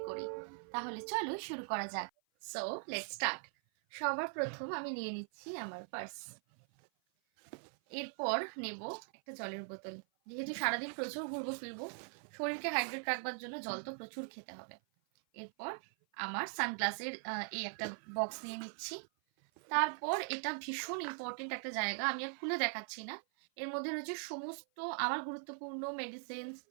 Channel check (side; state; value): left; silent; 51 dB below the other